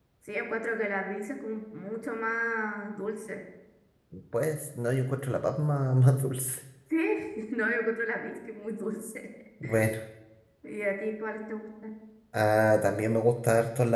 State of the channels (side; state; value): both; identical; correlation 1.00